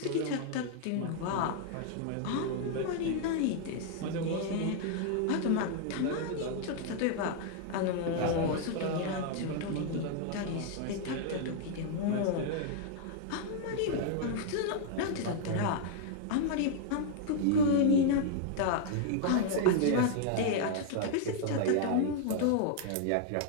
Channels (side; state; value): both; different; correlation 0.00